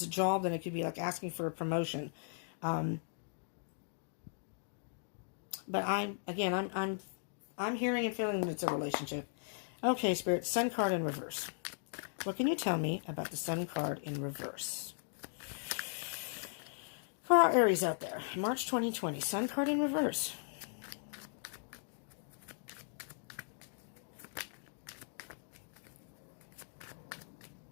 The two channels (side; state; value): right; silent; digital silence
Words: a job, then it could be like asking for a promotion. But I'm hearing and feeling that it's a relationship. Okay, Spirit, Sun card in reverse. What can you tell me about the Sun card in reverse? For our Aries out there, March 2020, Sun card in reverse.